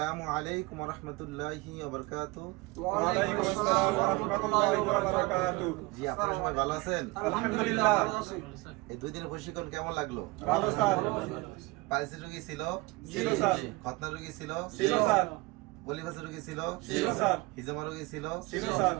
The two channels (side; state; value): left; quieter; 23.2 dB